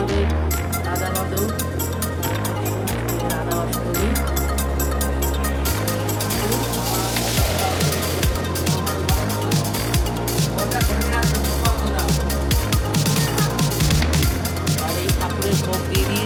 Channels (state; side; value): identical; both; correlation 1.00